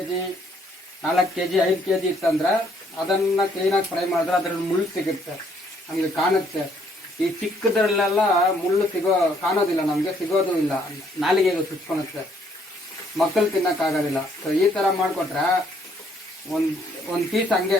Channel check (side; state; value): both; normal; correlation 0.67